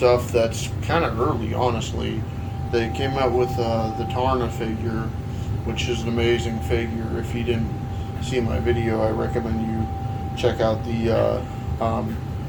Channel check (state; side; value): identical; both; correlation 1.00